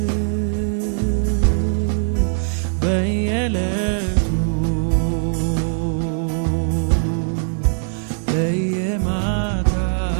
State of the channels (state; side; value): silent; left; digital silence